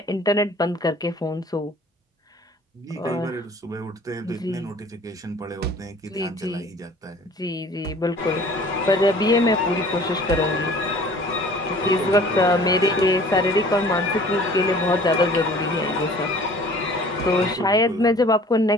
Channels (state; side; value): normal; both; correlation 0.49